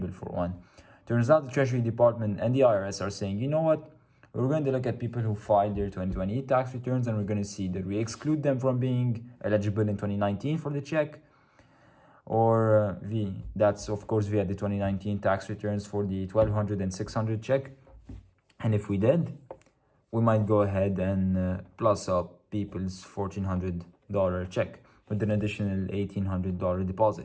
for one. Turns out the Treasury Department and the IRS are saying, you know what? We're going to look at people who filed their 2020 tax returns, and we're going to see that we exclude them from being eligible in 2019 for the check, or that's of course via the 2019 tax returns for the $1,200 and $600 check. And if we did, we might go ahead and plus up people's $1,400 check with an additional $1,800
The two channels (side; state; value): both; identical; correlation 1.00